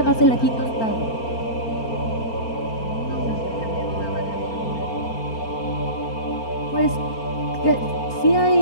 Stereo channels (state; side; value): late; right; 4.3 ms